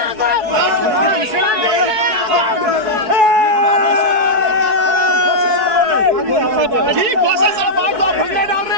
जी खोसा साहब आप तो भंगड़े डाल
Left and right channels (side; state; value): left; late; 4.6 ms